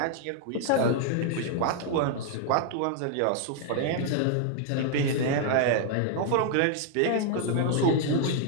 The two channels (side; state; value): both; different; correlation 0.00